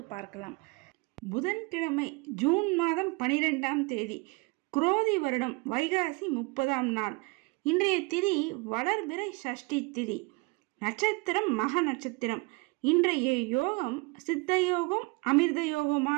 பார்க்கலாம். புதன்கிழமை ஜூன் மாதம் 12ஆம் தேதி, குரோதி வருடம் வைகாசி 30ஆம் நாள். இன்றைய திதி வளர்பிறை சஷ்டி திதி. நட்சத்திரம் மக நட்சத்திரம். இன்றைய யோகம் சித்த யோகம் அமிர்த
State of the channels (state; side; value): quieter; left; 27.5 dB